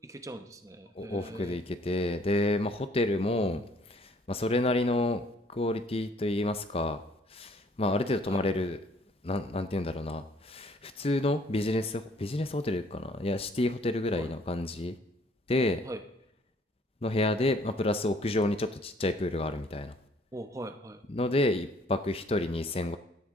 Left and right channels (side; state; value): both; normal; correlation 0.60